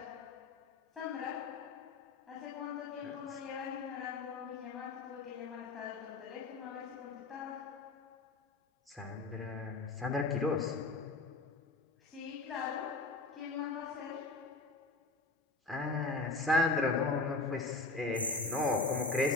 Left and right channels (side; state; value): right; quieter; 3.4 dB